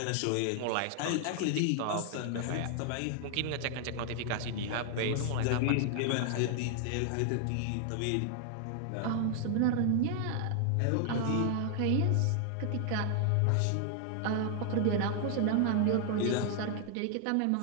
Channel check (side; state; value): both; different; correlation 0.00